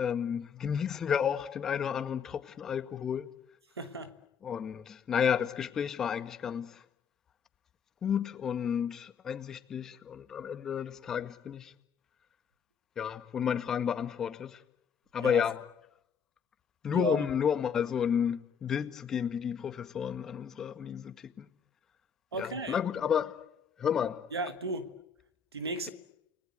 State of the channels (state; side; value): quieter; right; 6.8 dB